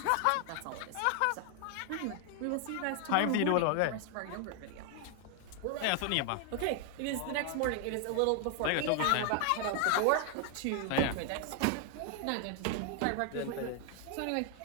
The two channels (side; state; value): both; different; correlation 0.00